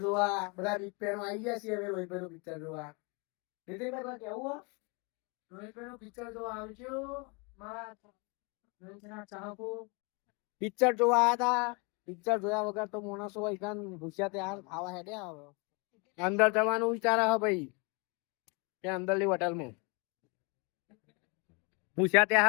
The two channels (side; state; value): right; quieter; 31.5 dB